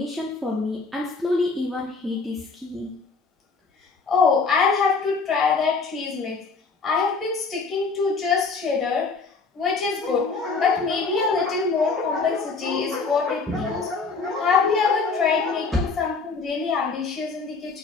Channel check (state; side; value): quieter; right; 4.5 dB